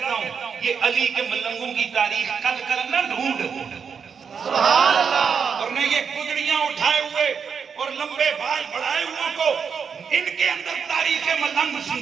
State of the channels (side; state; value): left; quieter; 6.5 dB